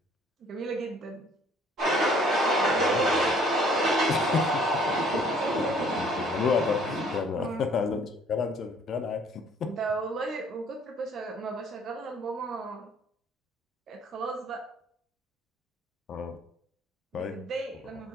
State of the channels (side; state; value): both; normal; correlation 0.58